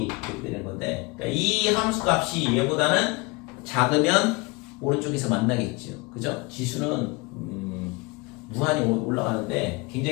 이렇게 되는 건데, 그러니까 이 함수 값이 얘보다는 작으면 오른쪽에서 만나겠죠. 그죠? 지수는 무한히 올라가는데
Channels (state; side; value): quieter; right; 26.5 dB